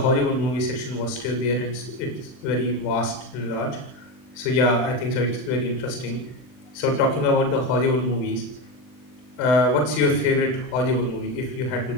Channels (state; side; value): late; right; 39 ms